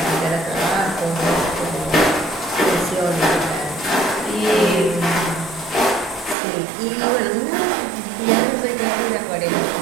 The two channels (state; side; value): drops out; left; at 6.4 s